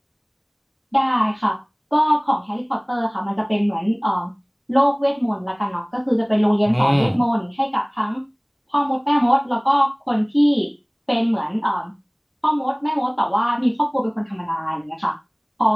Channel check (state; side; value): identical; both; correlation 1.00